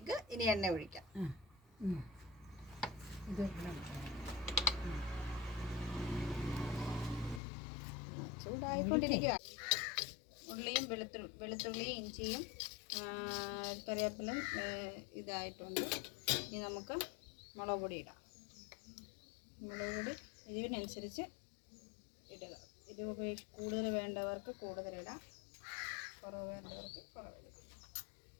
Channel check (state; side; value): drops out; right; at 7.4 s